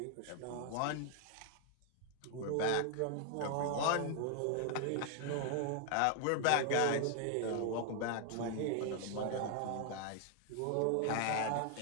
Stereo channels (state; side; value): different; both; correlation 0.00